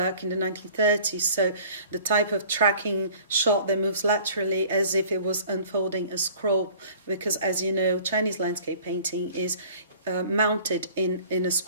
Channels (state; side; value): inverted; both; correlation -0.49